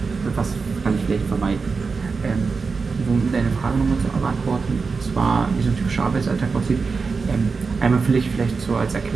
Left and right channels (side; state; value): left; quieter; 4.8 dB